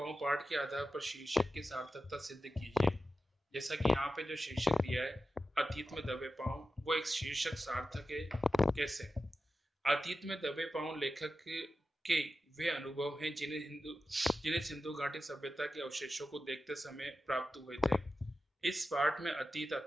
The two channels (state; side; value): normal; both; correlation 0.92